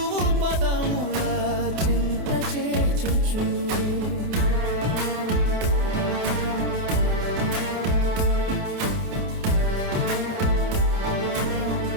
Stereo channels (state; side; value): late; left; 28 ms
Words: పదముల చింత చేర్చుచు